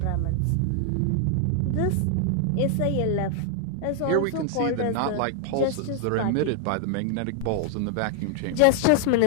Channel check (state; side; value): different; both; correlation 0.00